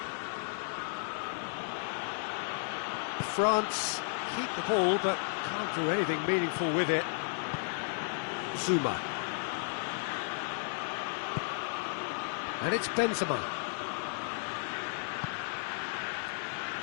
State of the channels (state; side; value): silent; right; 55 dB below the other